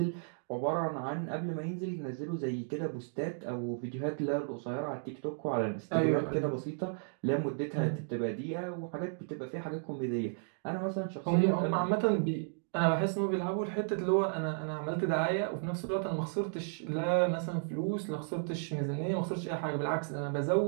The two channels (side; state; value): left; silent; digital silence